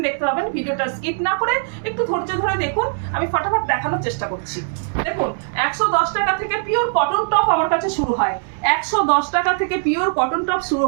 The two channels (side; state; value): left; silent; 65 dB below the other